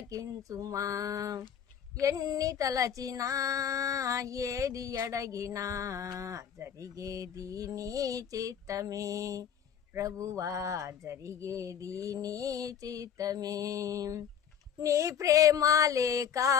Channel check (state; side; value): quieter; right; 8.3 dB